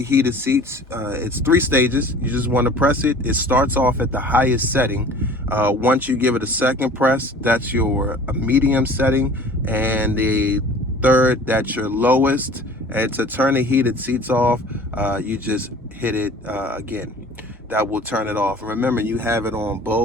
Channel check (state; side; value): normal; both; correlation 0.45